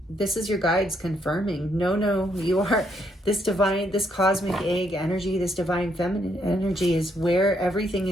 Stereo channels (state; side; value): normal; both; correlation 0.73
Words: this is your guides confirming, no, you are this divine, this cosmic egg energy, this divine feminine energy is where everything